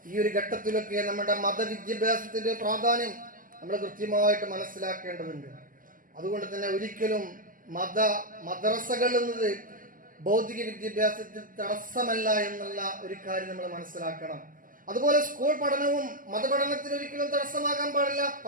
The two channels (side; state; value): left; late; 0.40 ms